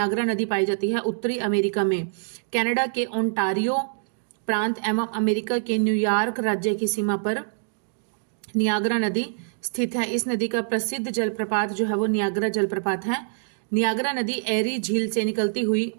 नदी पाई जाती है उत्तरी अमेरिका में, कनाडा के ओंटारियो प्रांत एवं अमेरिका के न्यूयॉर्क राज्य की सीमा पर नियाग्रा नदी स्थित है। इस नदी का प्रसिद्ध जलप्रपात जो है वो नियाग्रा जलप्रपात है। नियाग्रा नदी एरी झील से निकलती हुई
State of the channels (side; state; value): left; silent; digital silence